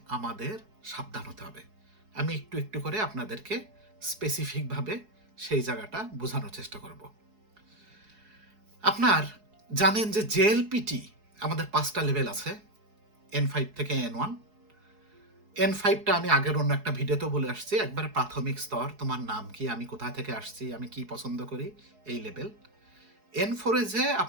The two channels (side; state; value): left; late; 4.7 ms